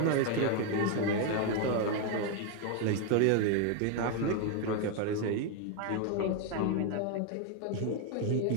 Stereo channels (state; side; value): different; both; correlation 0.01